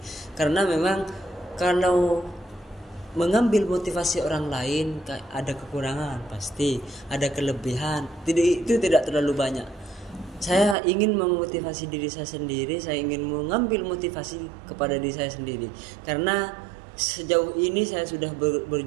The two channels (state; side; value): drops out; left; at 10.8 s